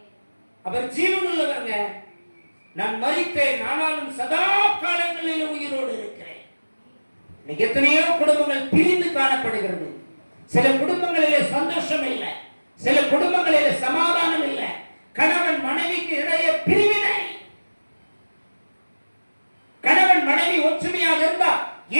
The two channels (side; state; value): both; inverted; correlation -1.00